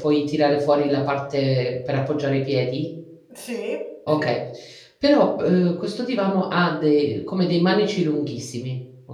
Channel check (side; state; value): both; identical; correlation 1.00